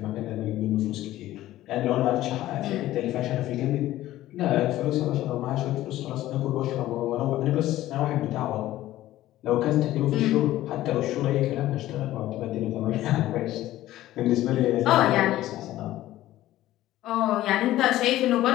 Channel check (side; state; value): right; quieter; 14.9 dB